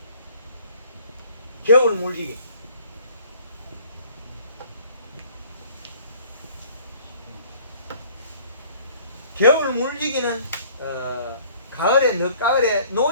겨울 물지기. 겨울 물지기는 가을에 늦가을에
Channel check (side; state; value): both; inverted; correlation -0.54